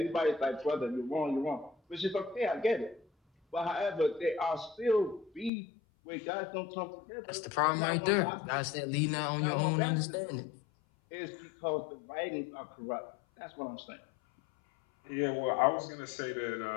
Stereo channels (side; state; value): right; drops out; at 5.5 s